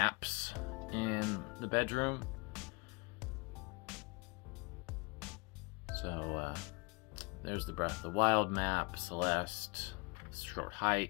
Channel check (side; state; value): right; quieter; 29.1 dB